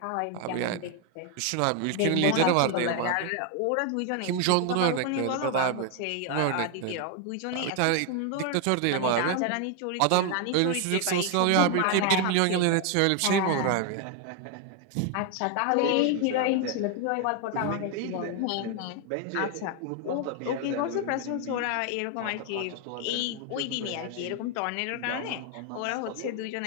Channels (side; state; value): both; different; correlation 0.01